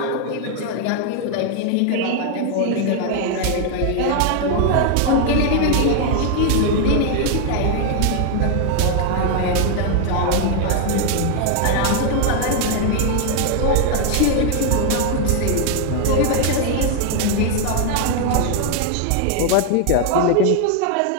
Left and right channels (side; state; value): both; different; correlation 0.00